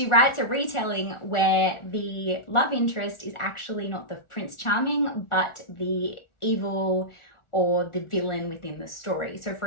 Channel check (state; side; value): late; right; 1.4 ms